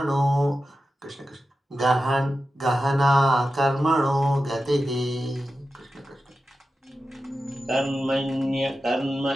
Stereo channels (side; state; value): both; normal; correlation 0.92